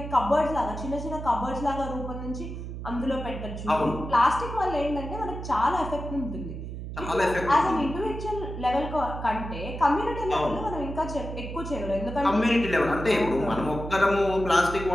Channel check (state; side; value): noise; right; hum, 8 dB below the sound